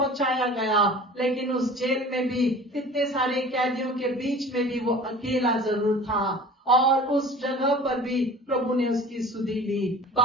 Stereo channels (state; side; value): normal; both; correlation 0.42